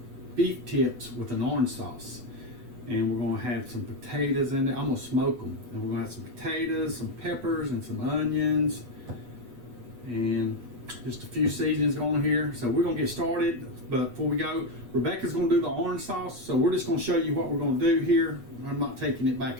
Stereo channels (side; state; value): left; late; 8.2 ms